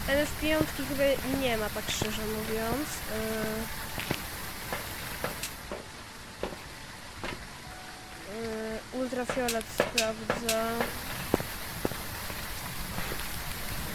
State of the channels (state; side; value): identical; both; correlation 1.00